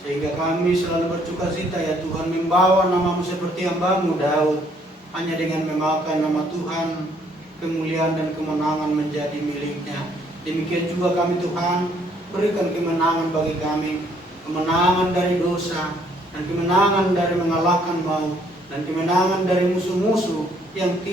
sehingga kami selalu bersukacita ya Tuhan, membawa nama-Mu seperti hamba-Mu Daud. Hanya dengan memakan nama Tuhan, kemuliaan dan kemenangan menjadi miliknya. Demikian juga kami Tuhan, berikan kemenangan bagi kami, kemenangan dari dosa, dan kemenangan dari mengalahkan maut, dan kemenangan dari musuh-musuh yang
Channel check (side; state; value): both; normal; correlation 0.66